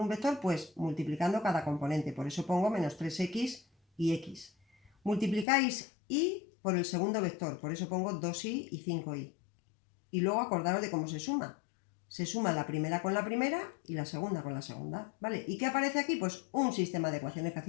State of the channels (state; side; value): drops out; right; at 5.5 s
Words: vector? Pues multiplicando cada componente. Por eso pongo menos 3x y x. Multiplicáis y por el segundo vector. Por eso pongo 2y y 5y. Y luego acordaros de cómo se suma. Se suma la primera con la primera y la segunda con la segunda. ¿Vale? ¿Y qué aparece aquí? Pues un sistema de ecuaciones que